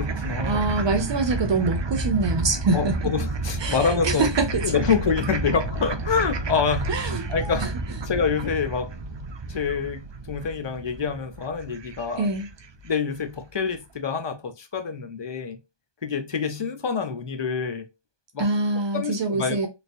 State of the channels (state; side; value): late; left; 1.2 ms